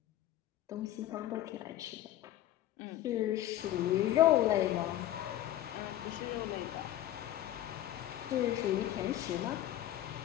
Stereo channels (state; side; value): quieter; right; 13.3 dB